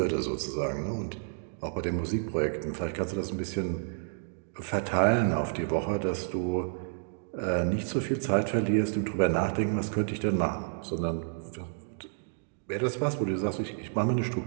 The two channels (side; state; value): left; silent; digital silence